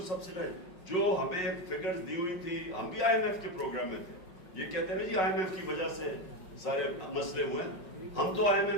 سبسیڈائز, جو ہمیں فگرز دی ہوئی تھی. ہم بھی آئی ایم ایف کے پروگرام میں تھے. یہ کہتے ہیں جی آئی ایم ایف کی وجہ سے سارے مسئلے ہوئے. ہم تو آئی ایم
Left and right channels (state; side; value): late; right; 5.5 ms